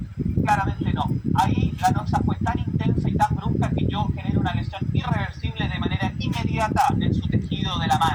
Claramente no. Ahí la noxa fue tan intensa y tan brusca que yo genero una lesión irreversible de manera inmediata en su tejido de la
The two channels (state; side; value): identical; both; correlation 1.00